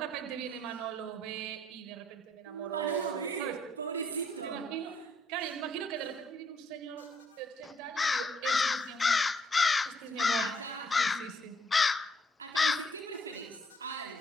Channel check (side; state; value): both; normal; correlation 0.69